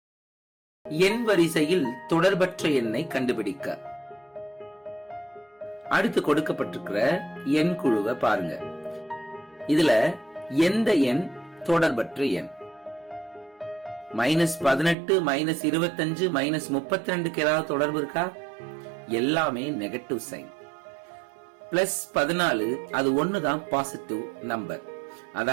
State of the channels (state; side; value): drops out; left; at 15.0 s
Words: எண் வரிசையில் தொடர்பற்ற எண்ணை கண்டுபிடிக்க. அடுத்து கொடுக்கப்பட்டிருக்கிற எண் குழுவை பாருங்க. இதுல எந்த எண் தொடர்பற்ற எண்? -18, -25, -32 ஏதாவது தொடர்பு இருக்கா? எல்லாமே நெகட்டிவ் சைன். +14 அது ஒண்ணுதான் பாசிட்டிவ் நம்பர்,